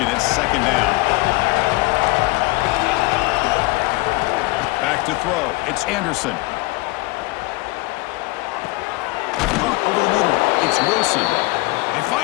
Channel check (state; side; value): quieter; right; 22.7 dB